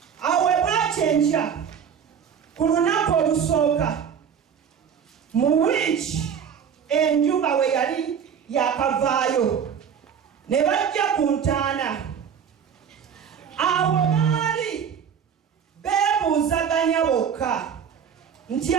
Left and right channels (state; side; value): quieter; left; 7.6 dB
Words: awe bwakyenkya ku lunaku olusooka mu wiiki enjuba we yali yakavaayo ne bajja ku ntaana. Awo baali beebuuzaganya bokka nti